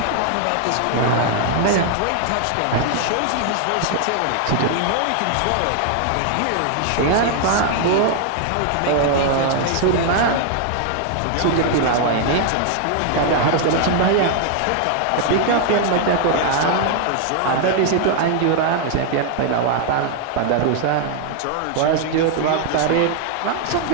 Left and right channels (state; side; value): different; both; correlation 0.00